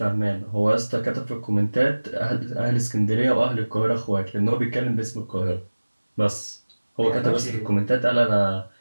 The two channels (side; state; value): both; inverted; correlation -1.00